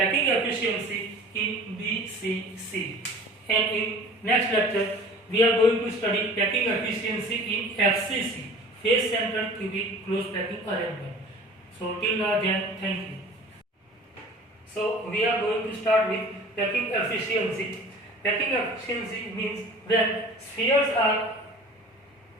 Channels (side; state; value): both; normal; correlation 0.43